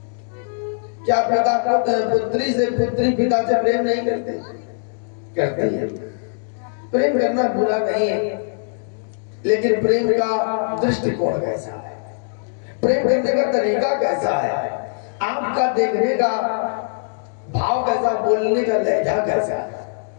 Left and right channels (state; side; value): silent; right; digital silence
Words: क्या पिता पुत्री से पुत्री पिता से प्रेम नहीं करते? करते हैं। प्रेम करना बुरा नहीं है, लेकिन प्रेम का दृष्टिकोण कैसा है, प्रेम करने का तरीका कैसा है, आपका देखने का भाव कैसा, बोलने का लहजा कैसा है,